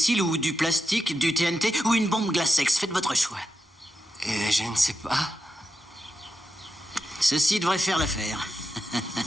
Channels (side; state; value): both; normal; correlation 0.88